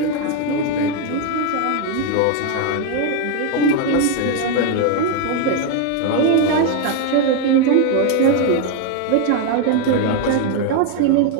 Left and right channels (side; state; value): both; different; correlation 0.01